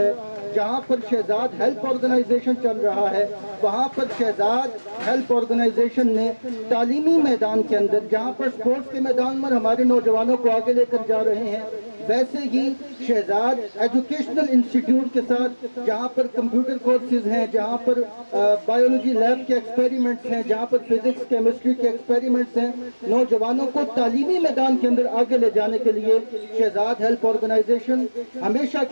جہاں پر شہزاد ہیلپ آرگنائزیشن چل رہا ہے, وہاں پر شہزاد ہیلپ آرگنائزیشن نے تعلیمی میدان کے اندر جہاں پر سپورٹس کے میدان میں ہمارے نوجوانوں کو آگے لے کر جا رہے ہیں, ویسے ہی شہزاد ایجوکیشنل انسٹیٹیوٹ کے ساتھ جہاں پر کمپیوٹر کورسز ہیں, جہاں پر بایولوجی لیب کے ایکسپیریمنٹس ہیں, جہاں پر فزکس کیمسٹری کے ایکسپیریمنٹس ہیں, نوجوانوں کو تعلیمی میدان کے اندر آگے لے جانے کے لیے شہزاد ہیلپ آرگنائزیشن ہمیشہ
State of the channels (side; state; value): both; inverted; correlation -1.00